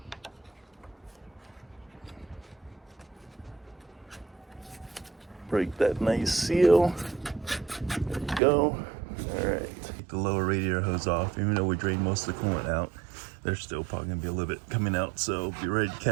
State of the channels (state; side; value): drops out; left; at 8.4 s